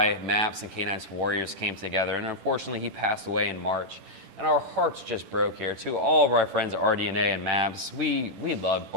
MAPS and K9s For Warriors came together, and unfortunately he passed away in March. And our hearts just broke here. To all of our friends at RDNA and MAPS, we loved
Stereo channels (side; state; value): left; late; 10 ms